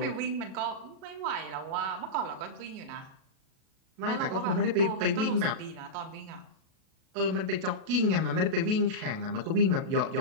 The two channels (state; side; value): late; left; 37 ms